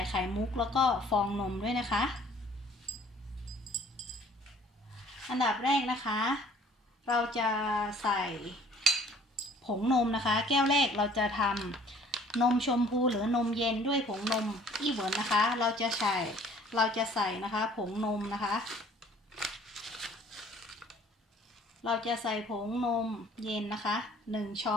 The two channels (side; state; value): both; normal; correlation 0.55